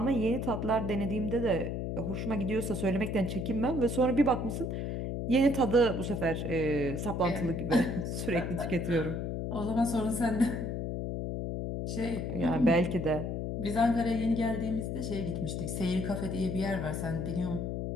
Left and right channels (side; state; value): left; noise; hum, 3 dB below the sound